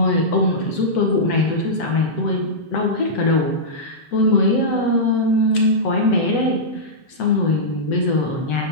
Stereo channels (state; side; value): late; right; 7.9 ms